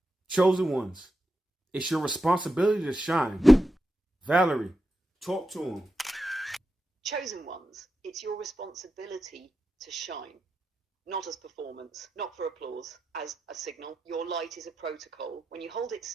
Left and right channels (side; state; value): both; normal; correlation 0.89